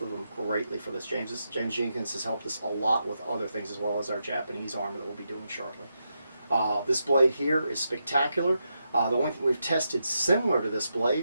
of them, greatly for this. James Jenkins has helped us a lot with other things as well as our Japanese armor that we'll be doing shortly. This blade here is spectacular. The only thing we've tested similar to this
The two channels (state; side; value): inverted; both; correlation -0.85